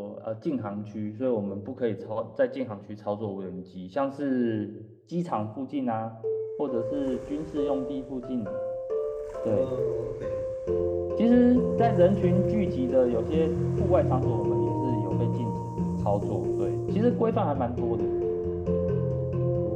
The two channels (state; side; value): identical; both; correlation 1.00